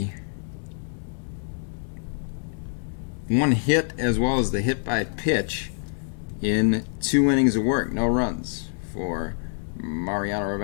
1 hit as well as the hit by pitch in 2 innings of work. No runs for Mariano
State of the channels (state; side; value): silent; right; digital silence